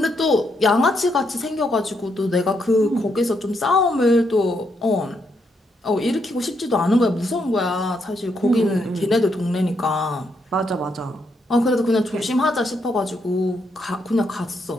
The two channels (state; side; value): normal; both; correlation 0.78